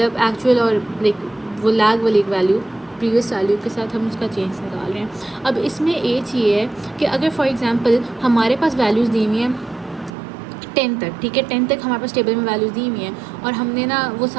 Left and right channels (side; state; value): left; drops out; at 10.1 s